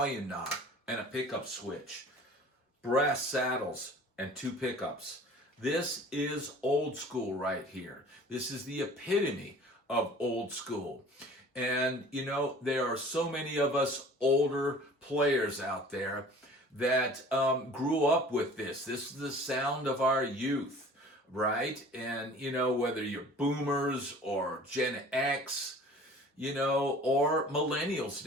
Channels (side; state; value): both; normal; correlation 0.46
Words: knob, and a pickup switch, brass saddles, and two pickups. This is old school right here. This is the epitome of old school. And, there are so many of us older players out there that grew up with this. This is the sound of our youth, right? And, whether you're boomers or Gen X, or millennials